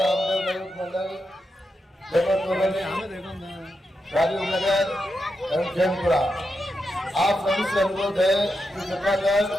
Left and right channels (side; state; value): both; normal; correlation 0.86